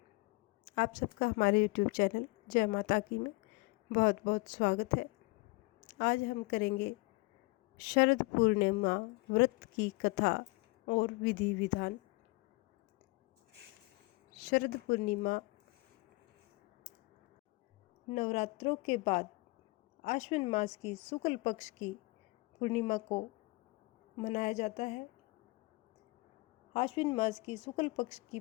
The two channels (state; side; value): quieter; right; 24.8 dB